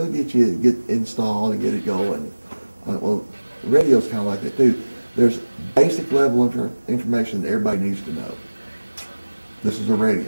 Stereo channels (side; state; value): both; inverted; correlation -1.00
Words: get you get installed and get it going. Well, radio's kind of like that too. There's basic level information that everybody needs to know. This is a